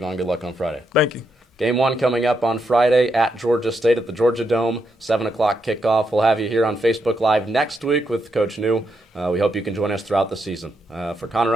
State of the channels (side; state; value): both; normal; correlation 0.81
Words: good luck on Friday. Thank you. Game 1 coming up on Friday at Georgia State at the Georgia Dome, 7 o'clock kickoff. We'll have you here on Facebook Live next week with Coach New. We hope you can join us throughout the season. For Connor